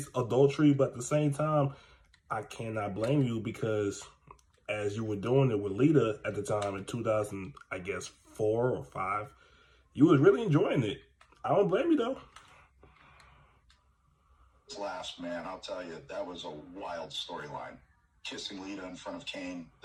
adultery, but at the same time, I cannot blame you because as you were doing it with Lita at the time in 2000, I guess 4 or 5, you was really enjoying it. I don't blame you though. Last, man, I'll tell you, that was a wild storyline. Kissing Lita in front of Kane,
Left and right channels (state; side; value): identical; both; correlation 1.00